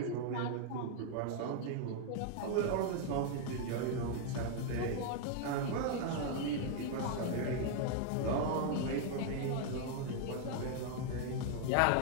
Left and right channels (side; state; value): both; different; correlation 0.00